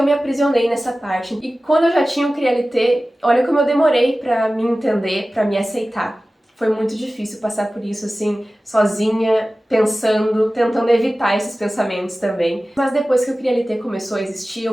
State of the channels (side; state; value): both; normal; correlation 0.96